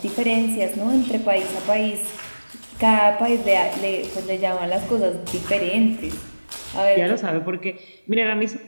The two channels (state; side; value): inverted; both; correlation -1.00